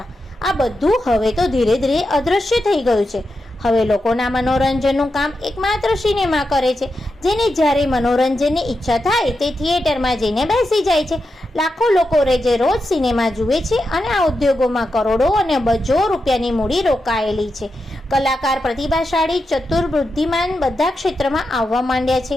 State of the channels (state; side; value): normal; both; correlation 0.88